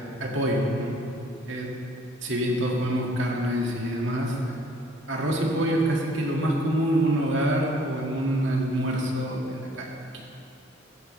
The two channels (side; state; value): both; normal; correlation 0.59